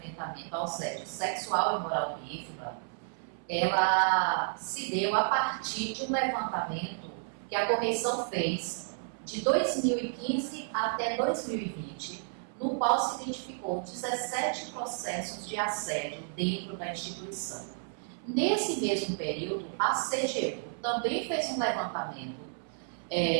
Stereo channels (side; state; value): left; silent; 57 dB below the other